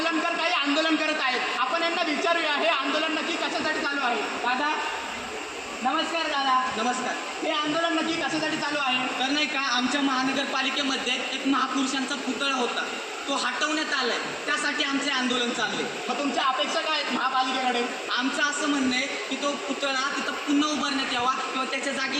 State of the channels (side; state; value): both; identical; correlation 1.00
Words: काही आंदोलन करत आहेत. आपण यांना विचारूया हे आंदोलन नक्की कशासाठी चालू आहे. दादा नमस्कार. दादा नमस्कार हे आंदोलन नक्की कशासाठी चालू आहे. तर नाही का आमच्या महानगरपालिकेमध्ये एक महापुरुषांचा पुतळा होता तो हटवण्यात आलाय त्यासाठी आमचे आंदोलन चालले. मग तुमच्या अपेक्षा काय आहेत महापालिकेकडे. आमचं असं म्हणणं आहे की तो पुतळा तिथं पुन्हा उभारण्यात यावा किंवा त्याच्या